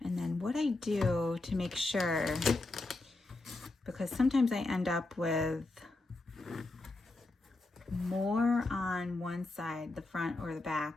And then what I do to make sure, because sometimes I end up with more on one side, the front or the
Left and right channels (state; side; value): quieter; right; 3.0 dB